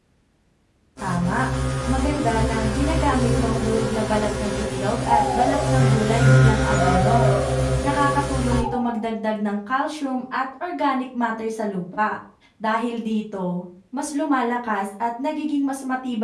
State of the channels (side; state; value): both; identical; correlation 1.00